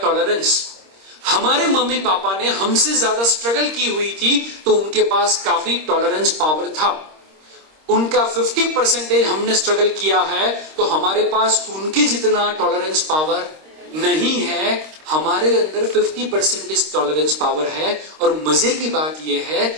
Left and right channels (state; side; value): late; left; 26 ms